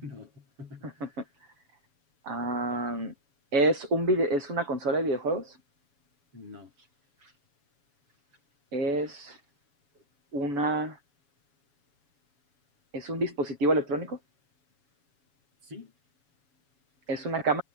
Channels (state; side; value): late; left; 7.1 ms